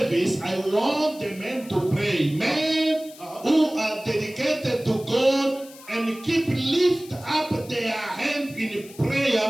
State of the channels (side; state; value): left; noise; hiss, 20 dB below the sound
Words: I want the men to pray. Men who are dedicated to God and lift up their hand in